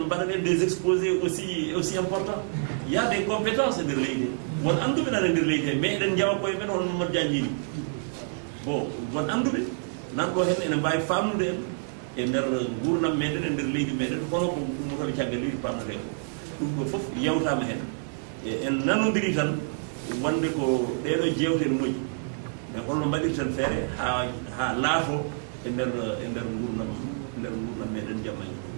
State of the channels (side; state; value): left; silent; digital silence